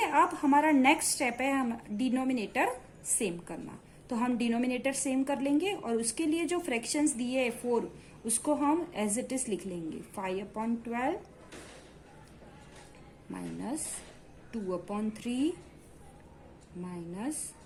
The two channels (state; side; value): identical; both; correlation 1.00